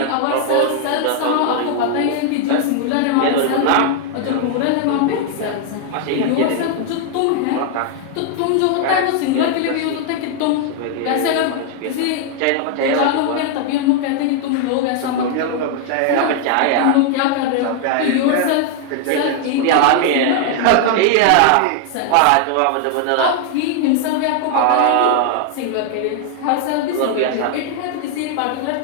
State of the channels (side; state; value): both; different; correlation 0.00